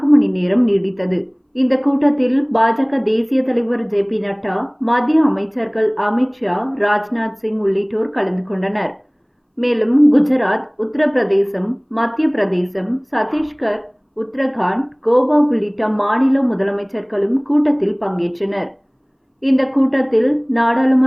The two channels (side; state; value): both; identical; correlation 1.00